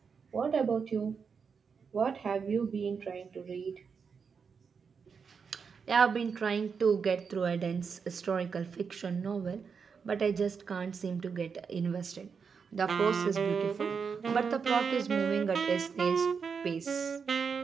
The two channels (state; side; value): quieter; left; 5.9 dB